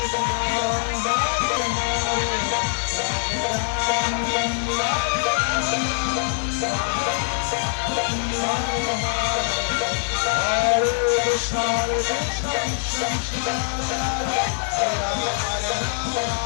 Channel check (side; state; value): right; silent; 63 dB below the other